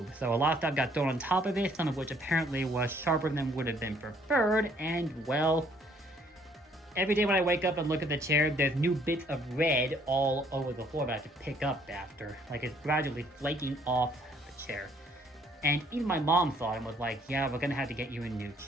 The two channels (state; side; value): normal; both; correlation 0.63